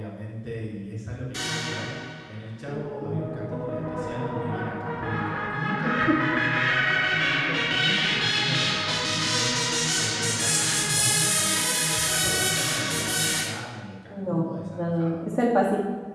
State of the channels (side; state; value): both; identical; correlation 1.00